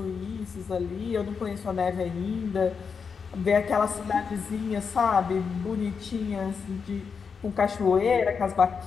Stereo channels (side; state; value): right; quieter; 5.8 dB